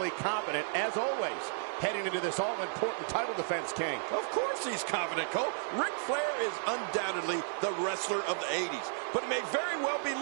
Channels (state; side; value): silent; left; 56 dB below the other